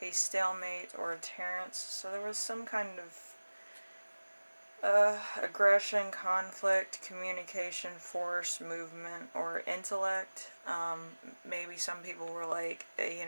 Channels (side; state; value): both; inverted; correlation -1.00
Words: a stalemate or a terrence. So there was some kind of aggression, conflict, communication, force, movement, or intellect. Maybe some people were like,